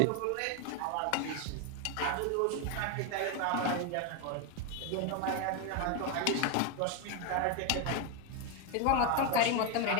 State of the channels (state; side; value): different; both; correlation 0.01